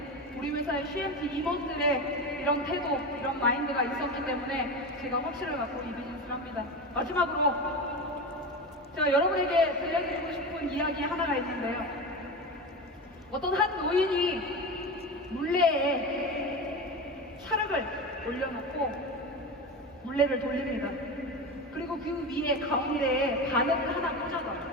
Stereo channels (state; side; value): normal; both; correlation 0.23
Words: 우리 회사의 CMT 임원들의 이런 태도, 이런 마인드가 있었기 때문에 제가 확신을 갖고 이 비즈니스를 합니다. 마지막으로 제가 여러분에게 들려드리고 싶은 이야기 하나가 있는데요. 어떤 한 노인이 물레에 찰흙을 올려놓고 물레를 돌립니다. 그리고 그 위에 가운데에 바늘을 하나